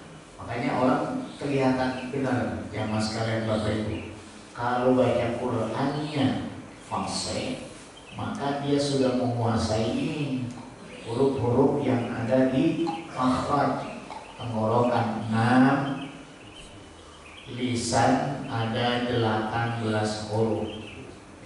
Makanya orang kelihatan benar, yang mas kalian bapak ibu. Kalau baca Qurannya fasih, maka dia sudah menguasai ini huruf-huruf yang ada di makhraj tenggorokan 6, lisan ada 18 huruf.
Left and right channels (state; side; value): identical; both; correlation 1.00